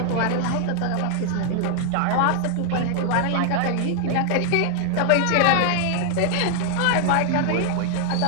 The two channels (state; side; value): different; both; correlation 0.00